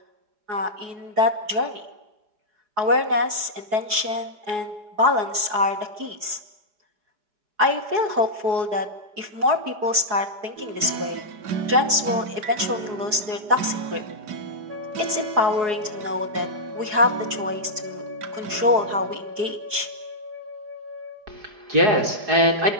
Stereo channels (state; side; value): late; left; 4.7 ms